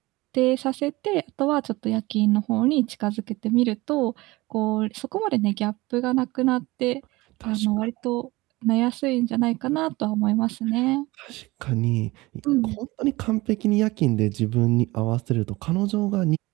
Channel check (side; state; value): left; quieter; 20.9 dB